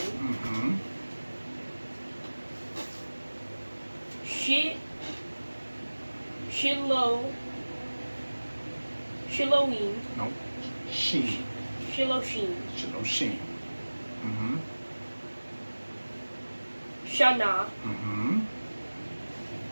Shiloim, No. Sheen. Shiloshim, Sheen. Mm-hmm. Shana, Mm-hmm.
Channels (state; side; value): inverted; both; correlation -1.00